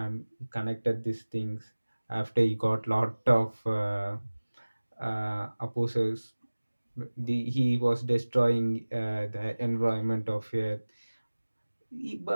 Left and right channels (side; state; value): both; inverted; correlation -1.00